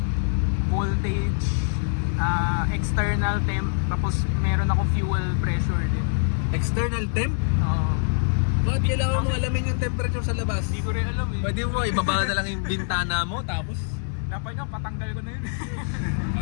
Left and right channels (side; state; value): right; silent; digital silence